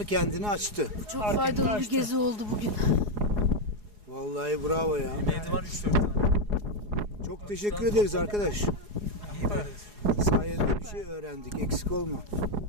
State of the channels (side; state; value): left; late; 4.8 ms